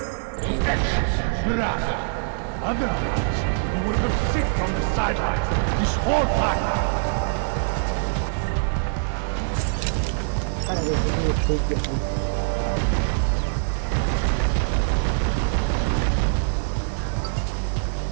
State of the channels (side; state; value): left; silent; 63 dB below the other